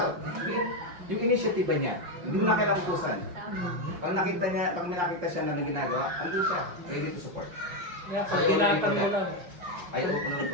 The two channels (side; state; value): left; late; 5.7 ms